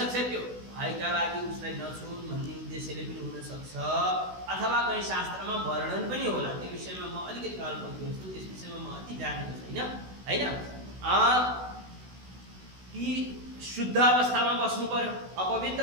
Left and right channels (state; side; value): late; left; 16 ms